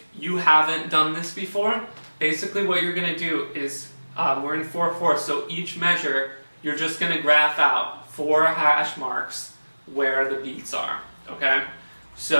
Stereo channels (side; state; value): both; inverted; correlation -1.00